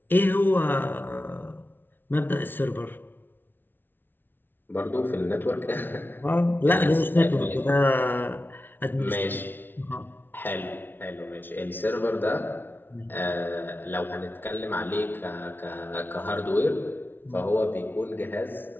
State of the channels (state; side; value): late; right; 0.098 ms